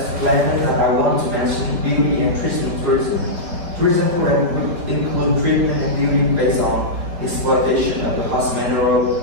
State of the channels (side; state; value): left; late; 4.5 ms